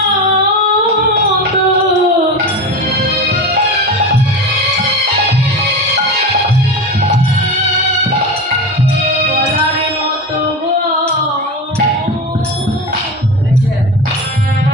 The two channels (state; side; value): normal; both; correlation 0.25